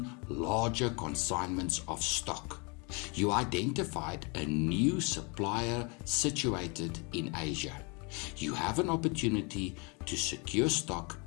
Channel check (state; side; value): quieter; right; 31.8 dB